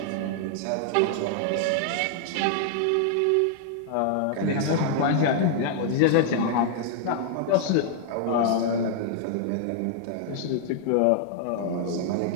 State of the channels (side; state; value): both; different; correlation -0.01